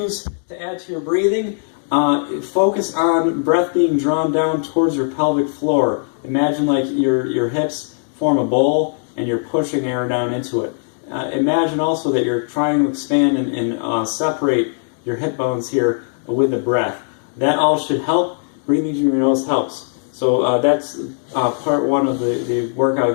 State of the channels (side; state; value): right; silent; 67 dB below the other